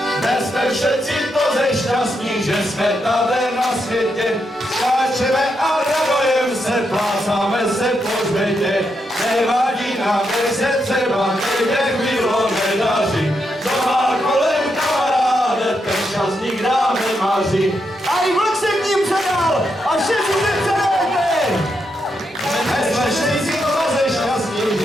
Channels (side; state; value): both; normal; correlation 0.82